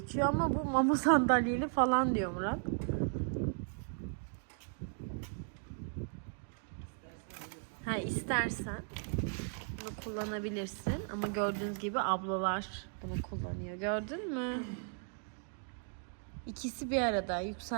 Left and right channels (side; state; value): left; silent; 54 dB below the other